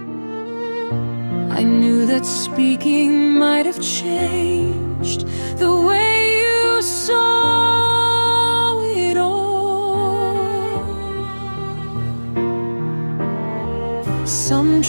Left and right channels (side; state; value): both; inverted; correlation -1.00